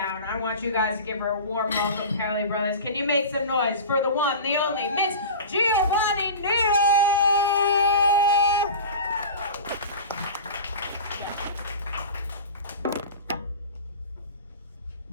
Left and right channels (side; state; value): both; inverted; correlation -0.33